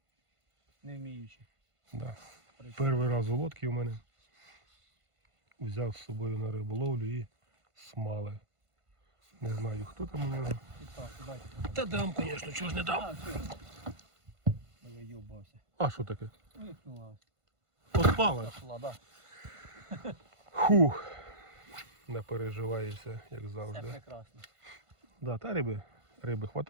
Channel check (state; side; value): late; left; 1.5 ms